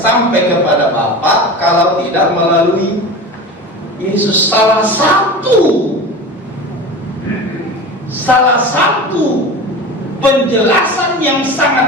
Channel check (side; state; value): both; normal; correlation 0.32